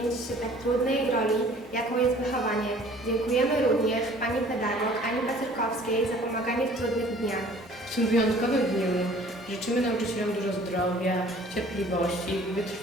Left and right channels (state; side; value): normal; both; correlation 0.52